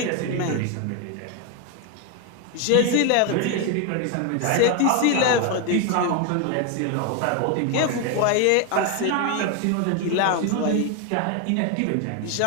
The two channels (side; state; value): both; different; correlation 0.01